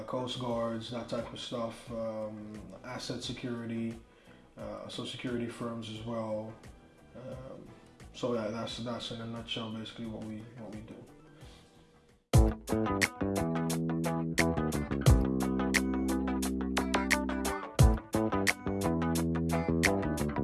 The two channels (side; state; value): both; identical; correlation 1.00